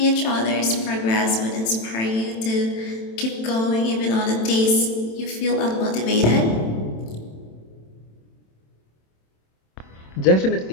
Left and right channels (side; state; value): right; late; 27 ms